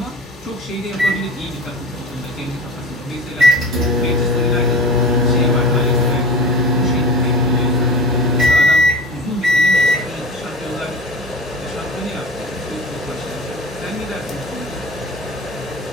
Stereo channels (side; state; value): both; normal; correlation 0.35